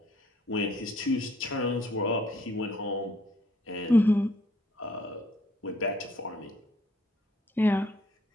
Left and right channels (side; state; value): both; normal; correlation 0.64